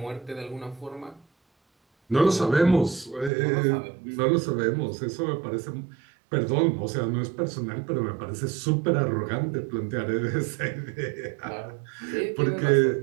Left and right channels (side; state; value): left; drops out; at 3.3 s